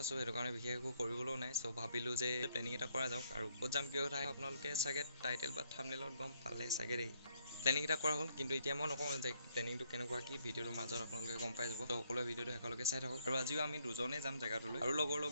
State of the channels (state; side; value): inverted; both; correlation -0.72